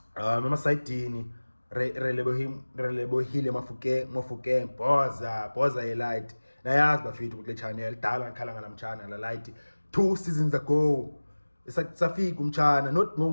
emasidini Relebohile Mofokeng boza light nayazi bafethu kule channel dala ngikhala ngalamtshana la light 2 seasons ago safika umtshana not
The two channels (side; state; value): both; inverted; correlation -1.00